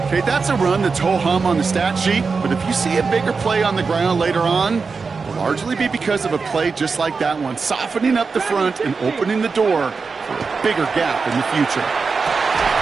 Okay, that's a run that's ho-hum on the stat sheet, but if you see a bigger play on the ground later on, it'll largely be because of a play just like that one, softening up the front and opening the door for a bigger gap in the future.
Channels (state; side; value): quieter; left; 4.8 dB